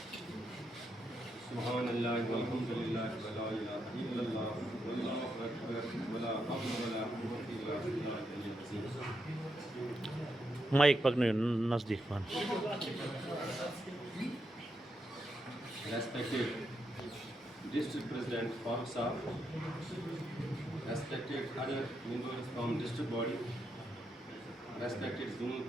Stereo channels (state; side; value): normal; both; correlation 0.82